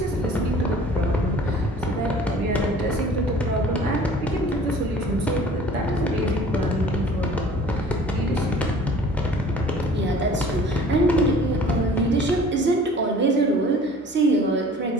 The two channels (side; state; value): both; normal; correlation 0.48